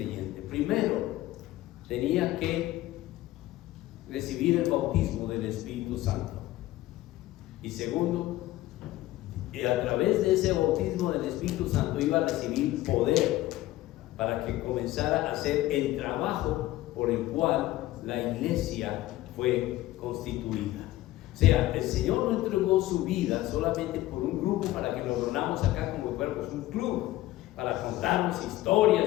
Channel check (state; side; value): quieter; right; 16.1 dB